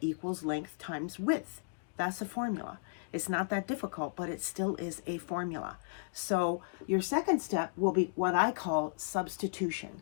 equals length times width. That's a formula. It's not that difficult, but it still is a formula. So your second step will be what I call substitution.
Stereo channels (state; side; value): silent; right; digital silence